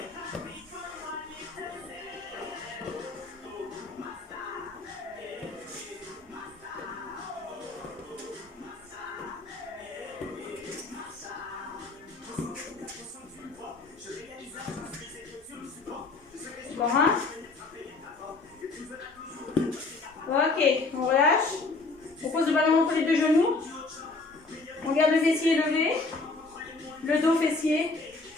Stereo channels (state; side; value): quieter; right; 3.6 dB